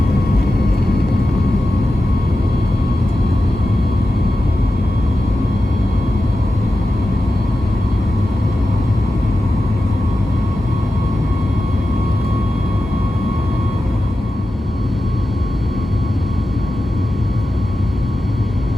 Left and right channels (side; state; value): both; normal; correlation 0.92